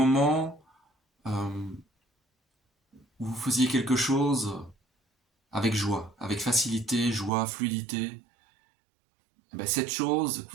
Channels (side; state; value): left; drops out; at 7.3 s